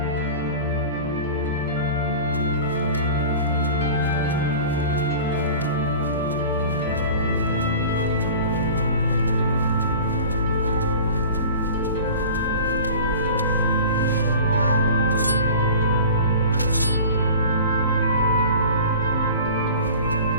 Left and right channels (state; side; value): inverted; both; correlation -0.40